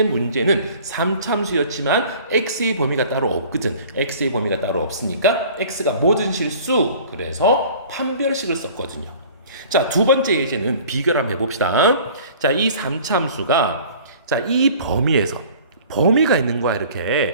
문제는 3참수였지만 x의 범위가 따로 없거든. x의 범위가 따로 없으니까 x가 모든 실수. 그래서 판별식을 썼거든요. 자, 두 번째 예제는 비교를 한번 해봅시다. 자, 이 3참수가, 자, 이 범위가 있는 거야.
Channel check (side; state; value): both; inverted; correlation -0.47